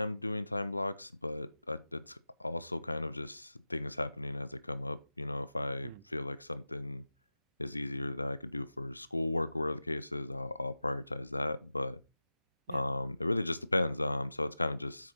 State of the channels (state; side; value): inverted; both; correlation -0.96